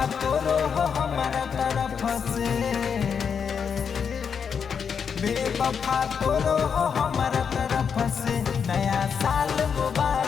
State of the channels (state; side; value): quieter; right; 6.7 dB